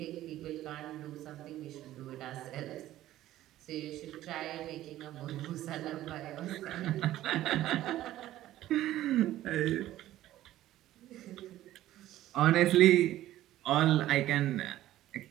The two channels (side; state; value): left; quieter; 14.2 dB